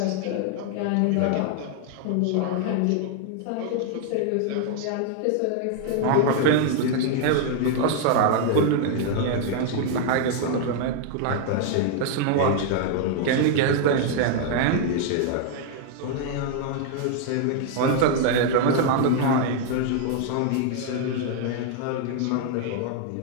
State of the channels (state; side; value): different; both; correlation 0.00